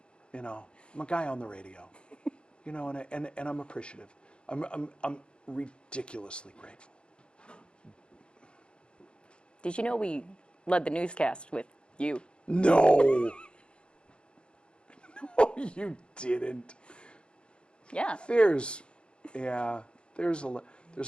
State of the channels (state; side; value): late; right; 0.055 ms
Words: I'm a guy on the radio, and I'm appreciative. I'm ridiculously grateful. Did you know we led the newscast with you? No. No, you didn't. Yeah. There's a